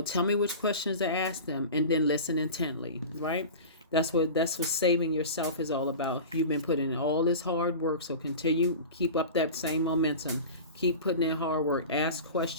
tell me which questions to ask them, and then listen intently, right? That's what saving yourself is all about. You've been putting in all this hard work, so keep up that same momentum. Keep putting in hard work. Ask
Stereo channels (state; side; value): inverted; both; correlation -0.33